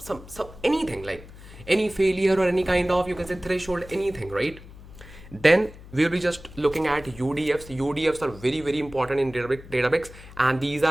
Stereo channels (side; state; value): left; noise; hum, 18 dB below the sound